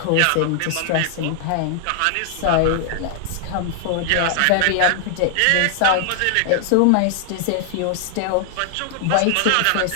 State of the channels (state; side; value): different; both; correlation 0.00